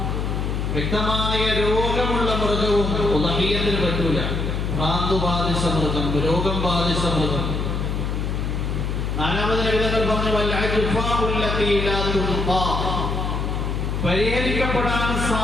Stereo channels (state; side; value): noise; left; hum, 1 dB below the sound